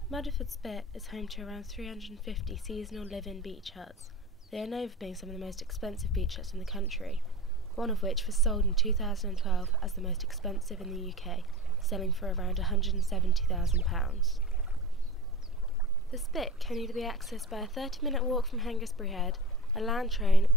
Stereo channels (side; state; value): both; normal; correlation 0.32